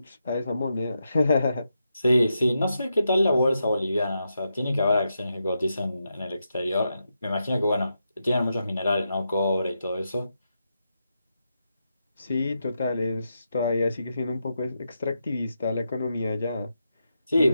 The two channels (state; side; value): inverted; both; correlation -0.85